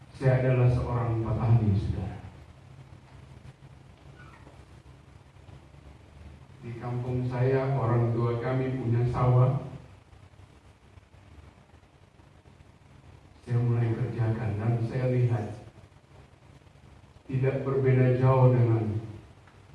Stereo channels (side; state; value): both; identical; correlation 1.00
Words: saya adalah seorang petani, saudara. Di kampung saya, orang tua kami punya sawah. Saya mulai kerjakan dan saya lihat tidak berbeda jauh dengan